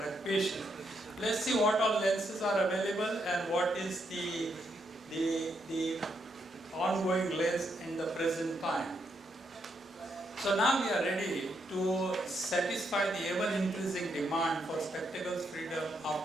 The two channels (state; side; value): normal; both; correlation 0.78